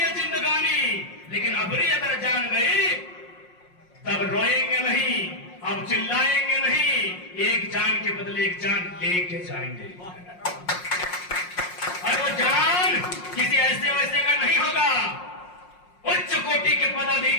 जिंदगानी। लेकिन अबरी अगर जान गई तब रोएंगे नहीं, अब चिल्लाएंगे नहीं, एक जान के बदले एक जान लेके जाएंगे। और वो जान किसी ऐसे वैसे का नहीं होगा, उच्च कोटि के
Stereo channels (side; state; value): right; late; 5.6 ms